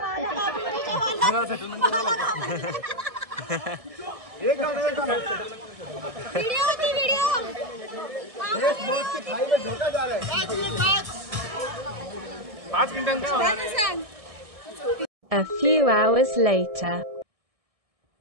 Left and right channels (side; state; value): left; late; 1.6 ms